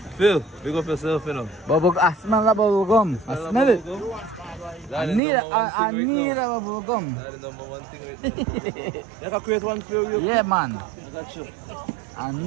Phil, big up yourself, you know. Bubble, I smell the bubble gum. I smell it. I need a bubble gum. That's the number one thing right now. You can create one for you. Yeah, man. I got you. I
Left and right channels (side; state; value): left; drops out; at 5.2 s